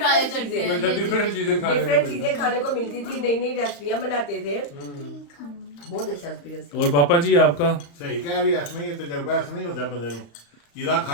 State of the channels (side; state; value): right; late; 35 ms